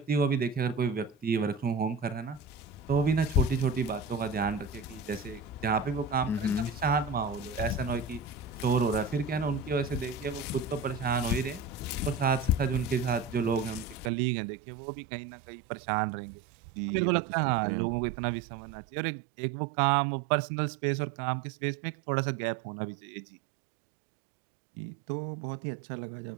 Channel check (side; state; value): left; drops out; at 14.1 s